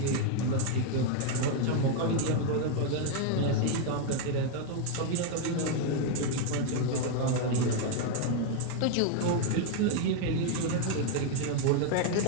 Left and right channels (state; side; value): different; both; correlation 0.00